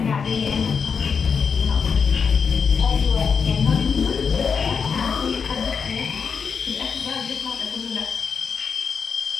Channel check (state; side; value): quieter; right; 6.0 dB